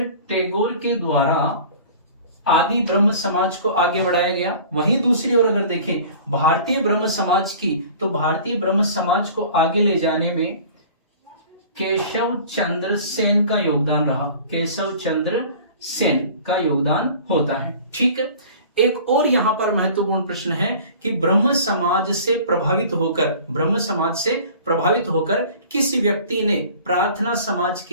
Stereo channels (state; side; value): inverted; both; correlation -0.44